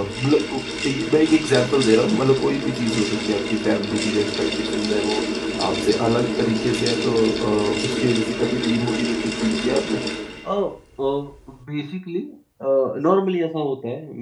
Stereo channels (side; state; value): both; identical; correlation 1.00